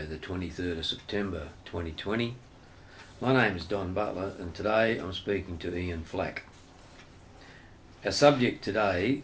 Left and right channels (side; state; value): both; identical; correlation 1.00